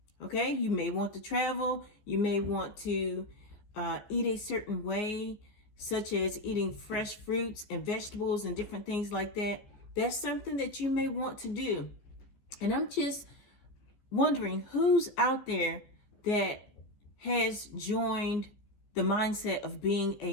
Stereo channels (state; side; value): late; right; 14 ms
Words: Okay, you may want to travel. You may want to eat a certain way, such as eating fresh fruits and vegetables and different things like that. That's something that you may want to do. And I'm just wondering who's out there that has joined the mindset of being